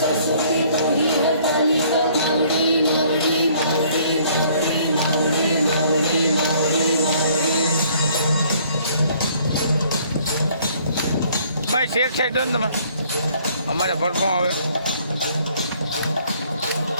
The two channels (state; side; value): inverted; both; correlation -0.60